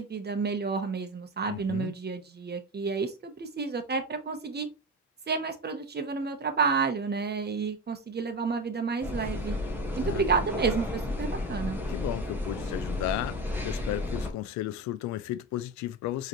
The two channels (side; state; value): both; normal; correlation 0.22